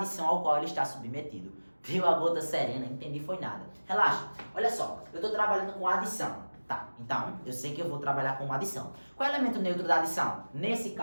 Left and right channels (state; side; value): inverted; both; correlation -1.00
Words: ao qual ele está submetido. Viu a gota serena? Entendi, foi nada. Relaxa. Olha só, eu estou trabalhando com adição. Tá, então eu sei que eu vou trabalhar com uma adição. Qual é o elemento neutro da adição? Nesse